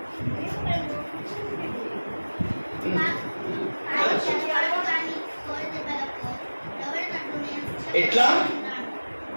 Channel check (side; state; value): both; inverted; correlation -1.00